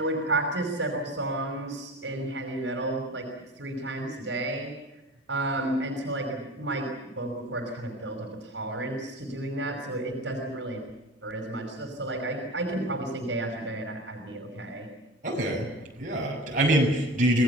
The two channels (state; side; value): normal; both; correlation 0.34